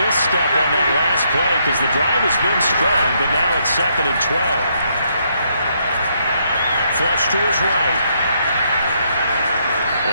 misstep on that last play because the drive has been strong, but now it's 2nd and 12. Flush to his right.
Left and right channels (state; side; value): inverted; both; correlation -0.74